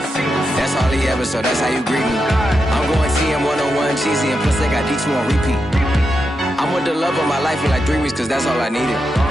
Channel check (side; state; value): both; normal; correlation 0.87